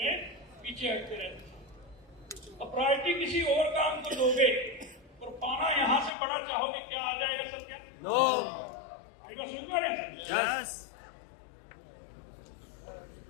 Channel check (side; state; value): right; drops out; at 6.1 s